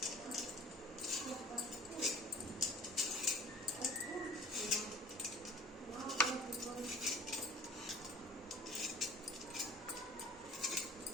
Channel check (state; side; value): normal; both; correlation 0.45